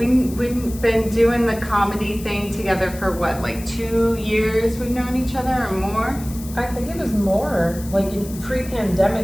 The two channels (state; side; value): noise; left; hiss, 16 dB below the sound